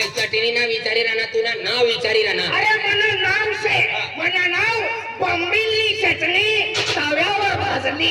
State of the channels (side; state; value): both; identical; correlation 1.00